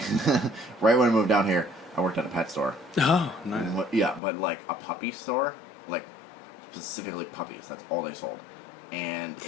right when I moved down here, I worked at a pet store. Oh, nice. Yeah, but like a puppy store, like specifically puppies. That's all they sold, and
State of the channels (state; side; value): drops out; right; at 4.2 s